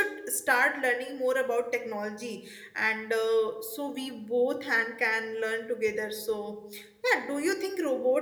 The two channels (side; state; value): both; identical; correlation 1.00